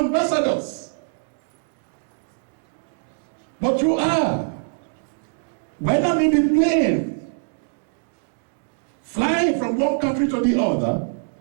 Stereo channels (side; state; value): left; silent; digital silence